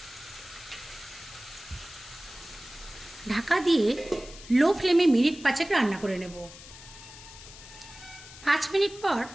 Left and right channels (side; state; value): left; noise; hiss, 17 dB below the sound